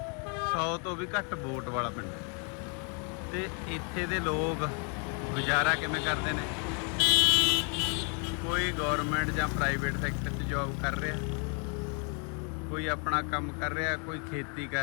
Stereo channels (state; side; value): quieter; right; 38.7 dB